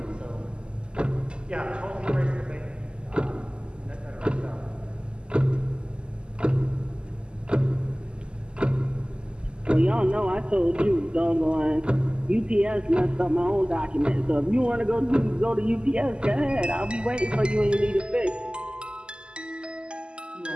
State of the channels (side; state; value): left; late; 0.049 ms